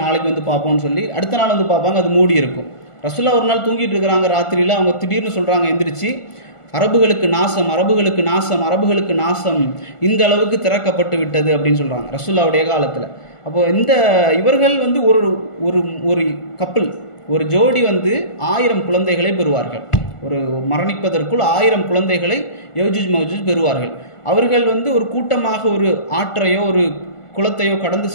நாளைக்கு வந்து பார்ப்போம்னு சொல்லி அடுத்த நாள் வந்து பார்ப்பாங்க, அது மூடி இருக்கும். ரசூலுல்லாஹ் ஒரு நாள் தூங்கிட்டு இருக்கிறாங்க ராத்திரியில். அவங்க திடீர்னு சொல்கிறாங்க எந்திரிச்சு, அரபுகளுக்கு நாசம், அரபுகளுக்கு நாசம், அரபுகளுக்கு நாசம், இந்த அளவுக்கு திறக்கப்பட்டு விட்டது அப்படின்னு சொல்கிறாங்க ரசூலுல்லாஹ்வுடைய காலத்தில். அப்போது இந்த இவர்கள் வந்து ஒரு ஒரு கப்பல், ஒரு ஜோடி வந்து 1000 குழந்தைகளை பெறுவார்கள். ஒரு மரணிப்பதற்குள் 1000 குழந்தைகளை யஜூஜ் மவ்ஜூஜ் பெறுவார்கள். அவர்கள் வந்து ஒரு கூட்டமாக ஒரு ஆற்றையோ ஒரு குளத்தையோ கடந்து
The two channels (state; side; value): late; right; 1.4 ms